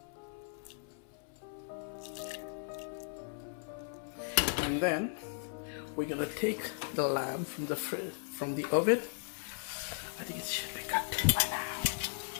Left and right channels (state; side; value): silent; right; 53 dB below the other